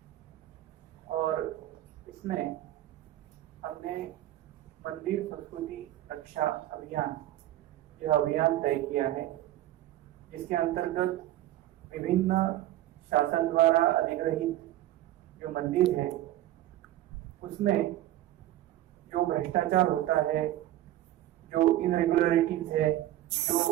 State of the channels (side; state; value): left; quieter; 14.3 dB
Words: और इसमें हमने मंदिर संस्कृति रक्षा अभियान यह अभियान तय किया है, जिसके अंतर्गत विभिन्न शासन द्वारा अधिग्रहित जो मंदिर है उसमें जो भ्रष्टाचार होता है, जो इनरेगुलरिटीज है,